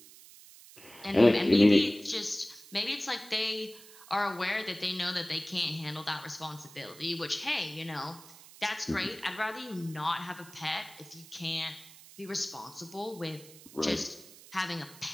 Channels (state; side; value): noise; right; hiss, 20 dB below the sound